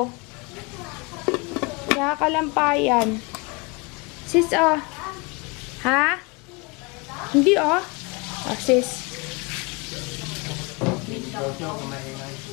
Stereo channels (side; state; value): right; quieter; 28.1 dB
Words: Nakakalampayan. Sis, oh. Ha? Hindi, oh. Oh, sis.